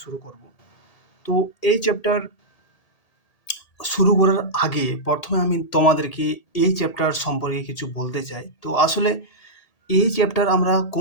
শুরু করব। তো এই চ্যাপ্টার শুরু করার আগে প্রথমে আমি তোমাদেরকে এই চ্যাপ্টার সম্পর্কে কিছু বলতে চাই। তো আসলে এই চ্যাপ্টার আমরা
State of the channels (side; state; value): right; late; 1.8 ms